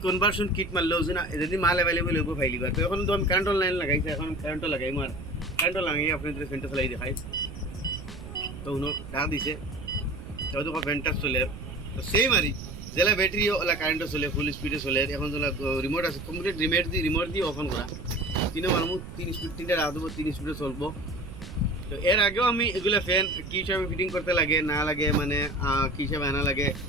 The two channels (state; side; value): noise; right; rumble, 11 dB below the sound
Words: কনভার্সন কিট মারলেও যদি মাল অ্যাভেলেবল হইব ফাইলিবা। তো এখন তো আমি কারেন্ট লাইন লাগাইছি, এখন কারেন্টও লাগাই মার কারেন্টও লাগাই আপনাদের ফ্যানটা চালাই দেখাই। তো উনো ডাক দিছে তো দেখো ফ্যানটা চলে তো সেম আরই যেলা ব্যাটারি ওলা কারেন্টও চলে ফুল স্পিডে চলে। এখন যেলা রিমোট আছে কমপ্লিট রিমোট দিয়ে অফ করা তিনও মানুষ 3 স্পিড 3টা রাখ দেবো 3 স্পিডে চলবো। তো এর আগেও আমি এগুলো ফ্যান কী হিসাবে ফিটিং করতে লাগে না লাগে মানে কী হিসাবে আনা লাগে